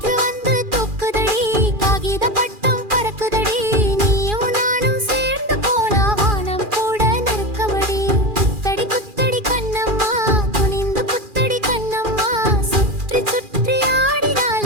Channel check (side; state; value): left; late; 2.4 ms